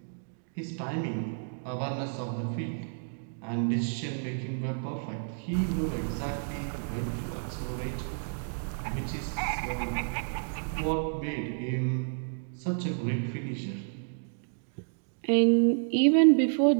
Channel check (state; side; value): silent; left; digital silence